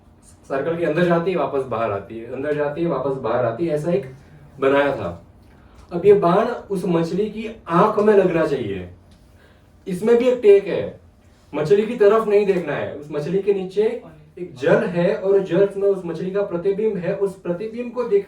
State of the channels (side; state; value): both; identical; correlation 1.00